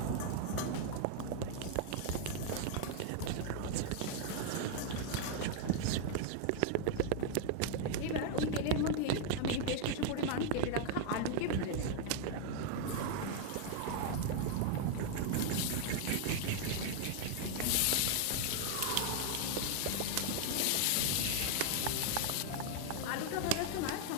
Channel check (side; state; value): both; different; correlation 0.00